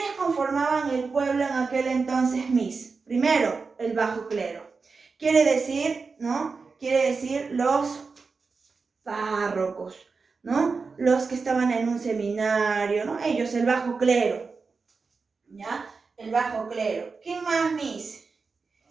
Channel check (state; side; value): quieter; left; 4.6 dB